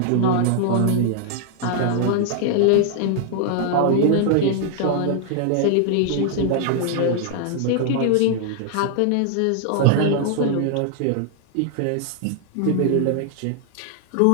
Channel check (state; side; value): different; both; correlation 0.00